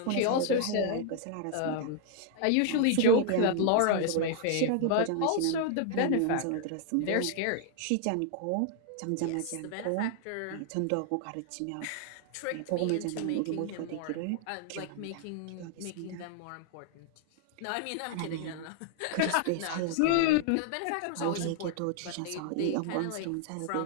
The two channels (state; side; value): different; both; correlation 0.00